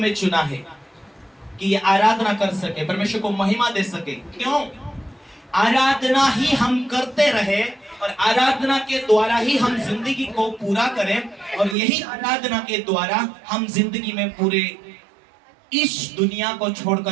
चुना है कि ये आराधना कर सके, परमेश्वर को महिमा दे सके। क्यों? आराधना ही हम करते रहे और आराधना के द्वारा ही हम जिंदगी को पूरा करें, और यही आराधना के द्वारा हम जिंदगी में पूरे इस दुनिया को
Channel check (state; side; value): drops out; left; at 11.8 s